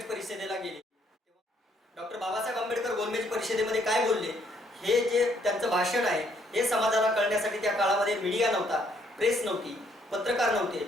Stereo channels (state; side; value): normal; both; correlation 0.68